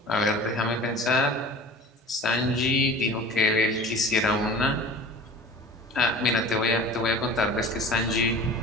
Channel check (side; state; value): both; normal; correlation 0.40